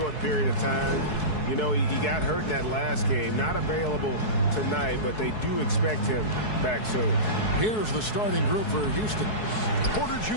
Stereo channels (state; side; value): late; right; 4.7 ms